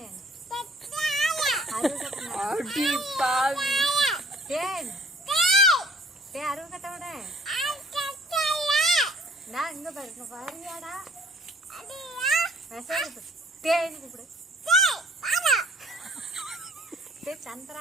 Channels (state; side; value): normal; both; correlation 0.57